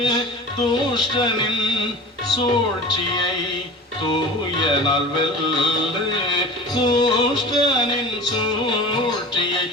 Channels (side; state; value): both; normal; correlation 0.36